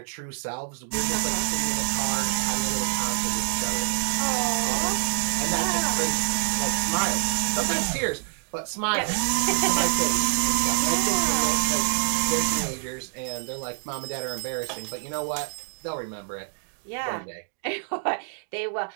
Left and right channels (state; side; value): silent; left; digital silence